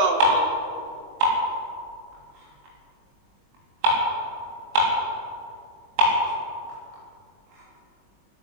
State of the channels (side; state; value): left; late; 21 ms